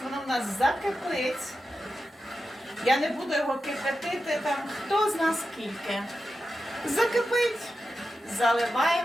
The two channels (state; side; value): normal; both; correlation 0.91